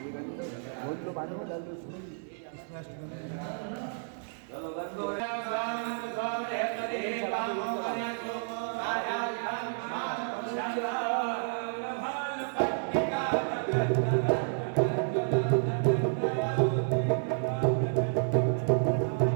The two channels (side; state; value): left; silent; digital silence